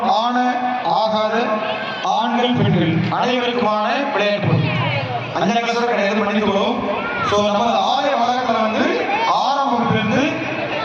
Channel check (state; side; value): identical; both; correlation 1.00